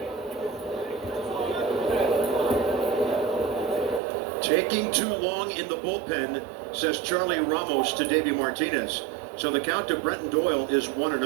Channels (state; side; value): drops out; left; at 4.0 s